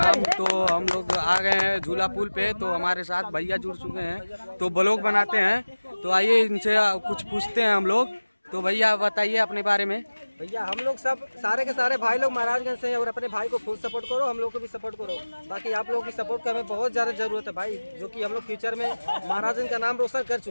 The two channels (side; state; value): both; inverted; correlation -1.00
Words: तो हम लोग आ गए हैं झूला पुल पे। तो हमारे साथ भैया जुड़ चुके हैं तो ब्लॉग बनाते हैं। तो आइए इनसे कुछ पूछते हैं हम लोग। तो भैया बताइए अपने बारे में। भैया हम लोग सब सारे के सारे भाई लोग महाराजगंज से हैं और अपने भाई को फुल सपोर्ट करो, हम लोग को भी सपोर्ट करो। बाकी आप लोगों की सपोर्ट की हमें बहुत ज़्यादा ज़रूरत है भाई, जो कि हम लोग फ्यूचर में महाराजगंज का नाम रोशन कर